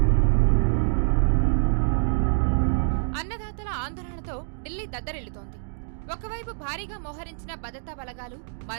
అన్నదాతల ఆందోళనతో ఢిల్లీ దద్దరిల్లుతోంది. ఒకవైపు భారీగా మోహరించిన భద్రతా బలగాలు,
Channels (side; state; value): left; silent; digital silence